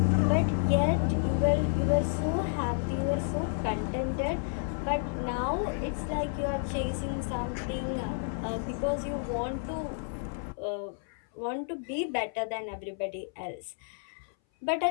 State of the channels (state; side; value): silent; right; 57 dB below the other